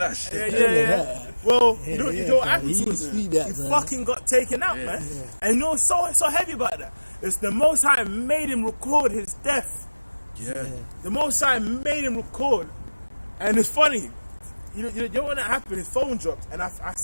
yeah. Well, you know what happened He to him? speak that, He bro. fucking got taken out, man. And you know what's so heavy about that? It's the Most High made him record his death. Yeah. The Most High made him record. And it's funny. You know when that happened, his phone dropped, and I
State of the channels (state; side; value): inverted; both; correlation -1.00